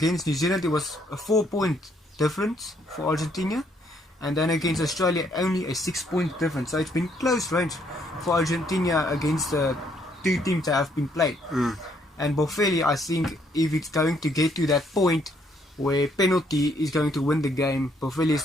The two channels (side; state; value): both; normal; correlation 0.69